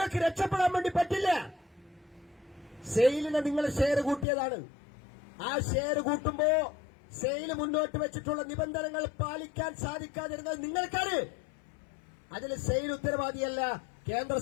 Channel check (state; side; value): drops out; right; at 4.2 s